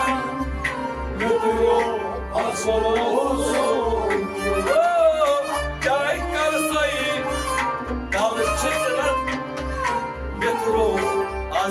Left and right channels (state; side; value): identical; both; correlation 1.00